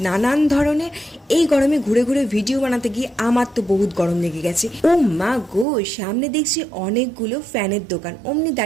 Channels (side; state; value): left; drops out; at 5.7 s